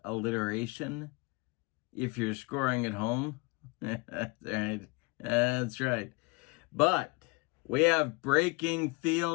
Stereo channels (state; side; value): quieter; right; 27.0 dB